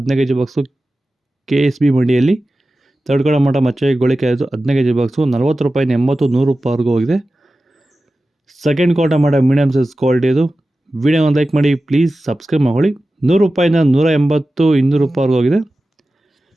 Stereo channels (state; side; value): normal; both; correlation 0.94